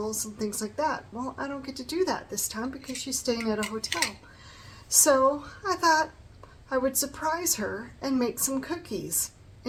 and things like that. Well, I don't get to do that this time because she's staying at a hotel. So I thought I would surprise her and make some cookies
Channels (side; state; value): both; identical; correlation 1.00